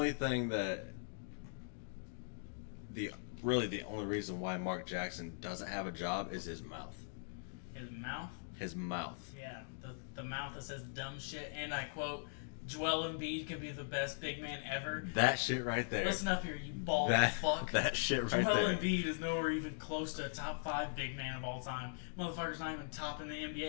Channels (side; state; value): right; silent; digital silence